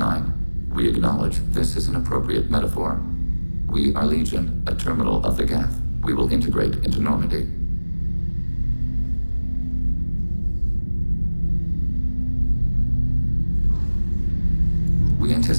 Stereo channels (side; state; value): both; inverted; correlation -1.00